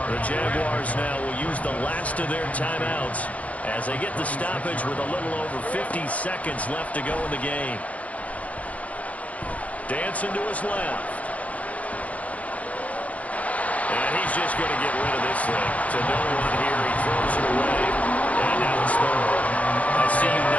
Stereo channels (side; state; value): right; late; 0.068 ms